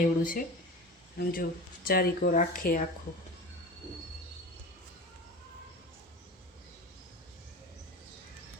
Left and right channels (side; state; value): both; normal; correlation 0.32